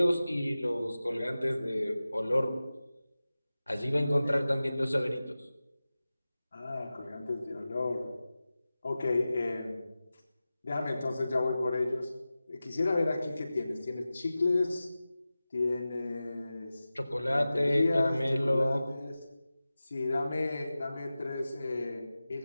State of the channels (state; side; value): inverted; both; correlation -0.95